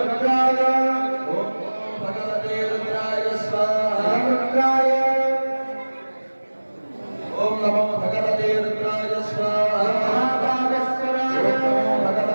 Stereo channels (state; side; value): inverted; both; correlation -1.00